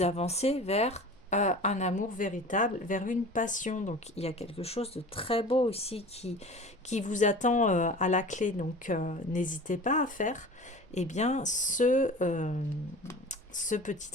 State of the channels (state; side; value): normal; both; correlation 0.39